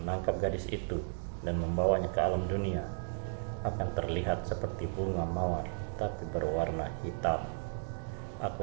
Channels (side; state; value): left; silent; digital silence